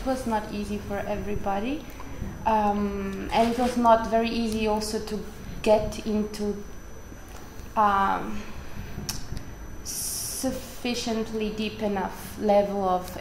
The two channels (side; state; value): both; identical; correlation 1.00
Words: was not easy for everybody. And it was not very easy also to get into sufficiently deep enough level of